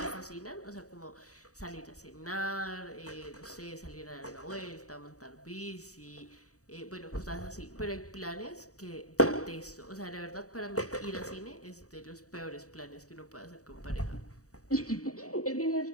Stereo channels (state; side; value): late; right; 0.66 ms